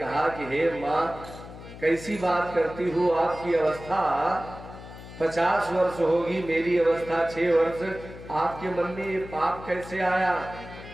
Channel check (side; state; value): left; noise; hum, 15 dB below the sound